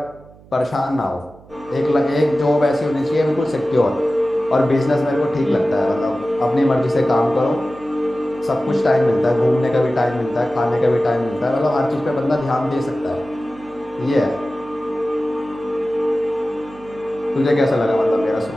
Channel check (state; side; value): noise; right; hum, 24 dB below the sound